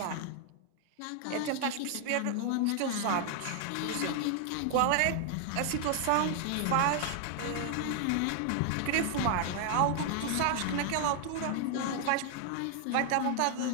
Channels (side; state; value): both; different; correlation 0.00